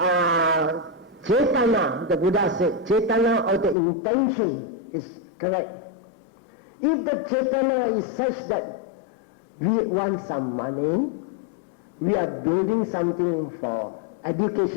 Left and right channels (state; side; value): drops out; right; at 3.8 s